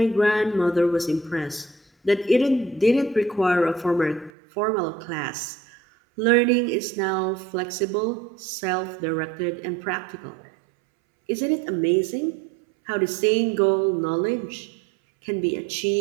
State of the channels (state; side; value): drops out; left; at 4.3 s